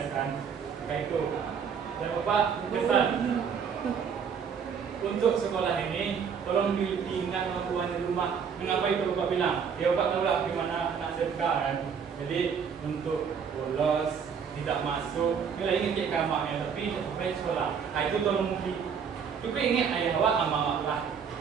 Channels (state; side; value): quieter; left; 6.8 dB